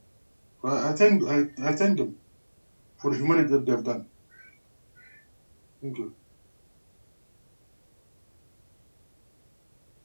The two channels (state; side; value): inverted; both; correlation -1.00